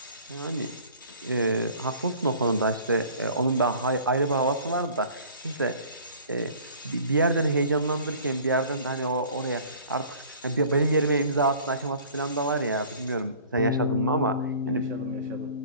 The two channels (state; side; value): inverted; both; correlation -0.48